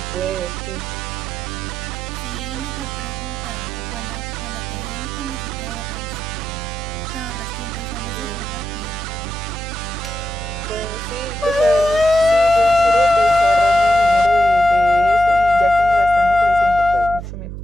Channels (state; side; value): noise; right; hum, 8 dB below the sound